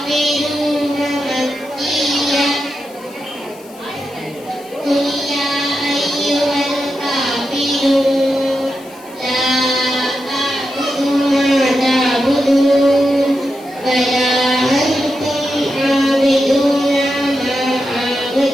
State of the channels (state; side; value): noise; left; hiss, 23 dB below the sound